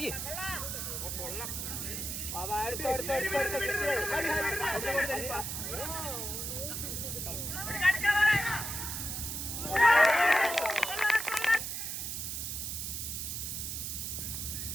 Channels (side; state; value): right; noise; hiss, 4 dB below the sound